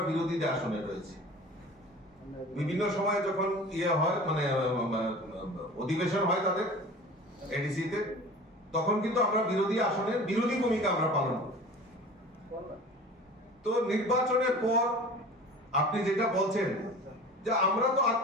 বিরোধীদের আসনে রয়েছে। বিভিন্ন সময় যখন হয় মানে অধিবেশন হয় তাদের এডিসিতে, তখন কিন্তু আমরা বিরোধী আসনের বিরোধী ভূমিকা আমরা পালন করি। তো নির্বাচনের পর আপনি যেটা বলছেন যে আমরা তো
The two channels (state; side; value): normal; both; correlation 0.40